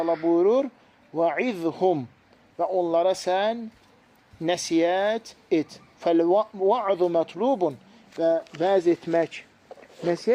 buyurur, وَعِذْهُمْ və onlara sən nəsiyyət et. فَالْوَعْذُ مَطْلُوبٌ və vəz etmək,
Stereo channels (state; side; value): identical; both; correlation 1.00